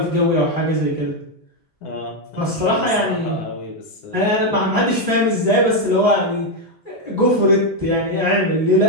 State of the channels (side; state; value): both; normal; correlation 0.04